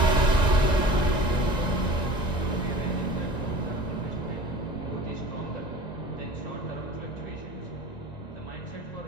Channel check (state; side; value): late; right; 1.9 ms